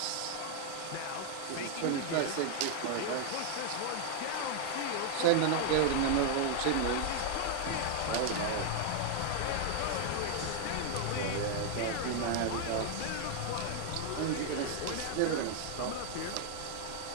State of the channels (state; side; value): different; both; correlation 0.00